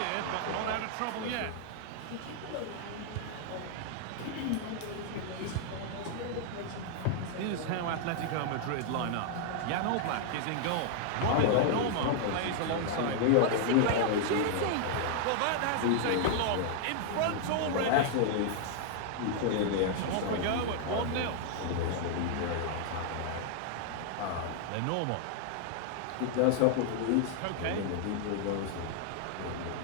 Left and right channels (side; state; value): both; different; correlation 0.00